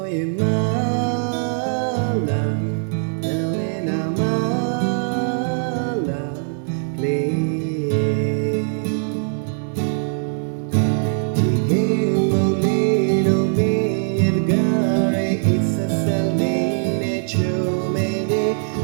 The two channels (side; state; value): left; silent; digital silence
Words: ရင်မ